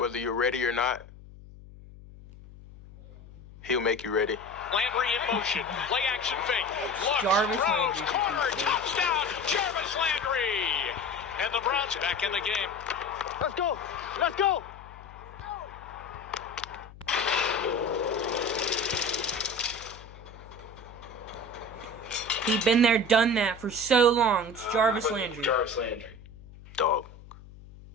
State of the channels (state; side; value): noise; left; hum, 19 dB below the sound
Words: Whether you're ready or not, he'll make you ready. Landry in motion. Play action fake. Looks, throws, corner, touchdown, Jarvis Landry. And the Browns back in the game. Let's go. Let's go. He's been there, done that for so long. It's Jarvis Landry. Jarvis Landry. Dog.